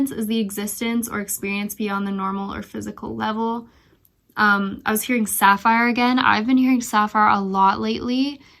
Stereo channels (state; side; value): identical; both; correlation 1.00